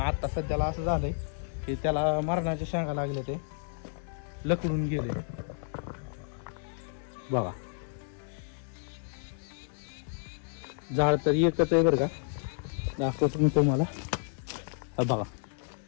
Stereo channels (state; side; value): silent; right; 56 dB below the other